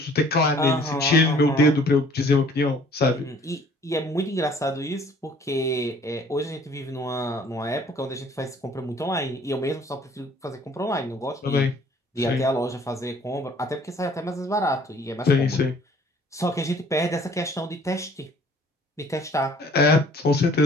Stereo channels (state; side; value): normal; both; correlation 0.55